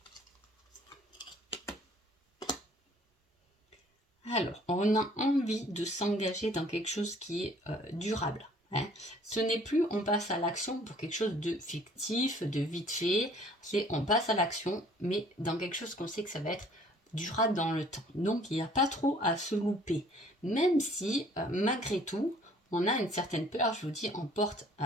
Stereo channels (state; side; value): normal; both; correlation 0.56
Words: Alors, on a envie de s'engager dans quelque chose qui est durable. Hein. Ce n'est plus on passe à l'action pour quelque chose de fictif, de vite fait. C'est on passe à l'action, mais dans quelque chose qu'on sait que ça va être durable dans le temps. Donc, il n'y a pas trop à se louper. Même si, malgré tout, on a une certaine peur, je vous dis, on porte,